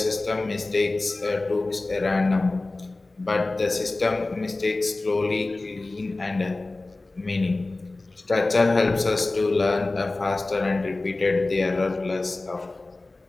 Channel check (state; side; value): quieter; right; 3.1 dB